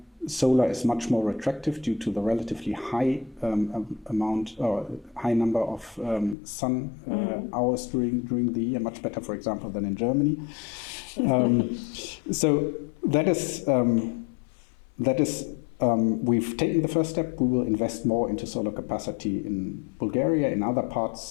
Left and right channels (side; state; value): right; drops out; at 6.4 s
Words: solar is much more attractive due to the relatively high high number of sun hours during the year, much better, for example, than in Germany. So that is we've taken the first step. We will invest more into solar capacity in Bulgaria. In other